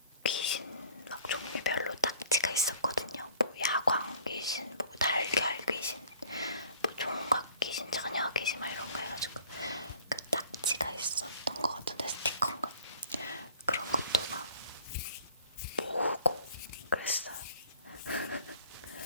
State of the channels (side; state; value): both; inverted; correlation -0.52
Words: 귀신 막 종류별로 딱지가 있었거든요. 뭐 야광 귀신, 뭐 달걀 귀신, 뭐 종각 귀신, 처녀 귀신 막 이런 거 해가지고 그 딱지가 있었던 것 같은데 스티커인가? 그런 것도 막 모으고 그랬어요.